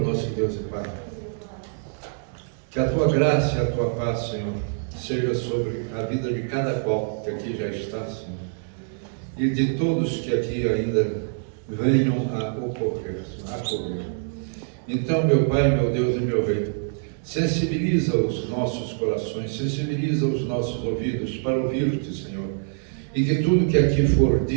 nosso Deus e Pai, que a Tua graça e a Tua paz, Senhor, seja sobre a vida de cada qual que aqui já está, Senhor, e de todos que aqui ainda venham a ocorrer. Então, meu Pai, meu Deus e meu Rei, sensibiliza os nossos corações, sensibiliza os nossos ouvidos para ouvir-te, Senhor, e que tudo que aqui for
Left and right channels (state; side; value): silent; left; digital silence